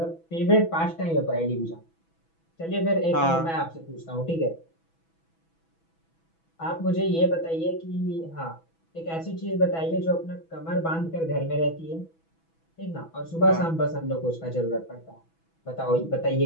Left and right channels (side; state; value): right; late; 6.1 ms